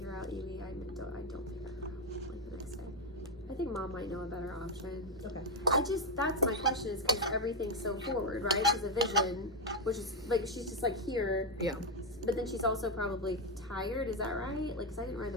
out Evie, I don't figure it out like the next day. I think Mom might know a better option. Okay. That's my question is because everything's so forward, right? She's a vision, which is like she's just like here, Yeah. but then she's also probably tired. Is that right? Like, cause I didn't ride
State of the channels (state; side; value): noise; right; hum, 21 dB below the sound